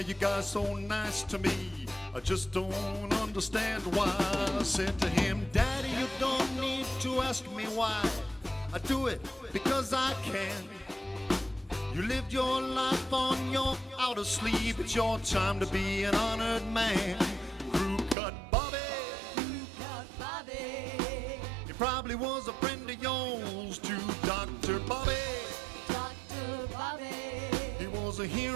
you guys so nice to me? I just don't understand why. I said to him, Daddy, you don't need to ask me why. I do it because I can. You lived your life on your outer sleeve. It's your time to be an honored man. Crew cut Bobby. Cut Bobby. He probably was a friend of yours to Dr. Bobby. Dr. Bobby. He was a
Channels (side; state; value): left; drops out; at 18.2 s